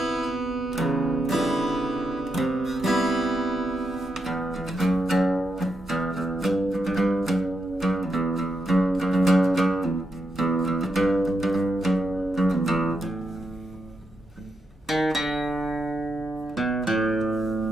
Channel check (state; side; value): normal; both; correlation 0.83